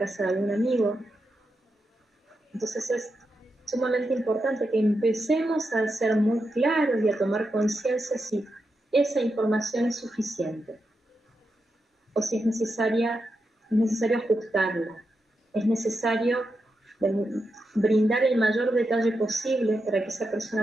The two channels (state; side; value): normal; both; correlation 0.87